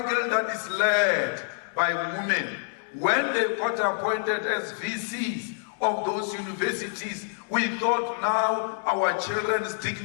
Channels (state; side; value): silent; right; digital silence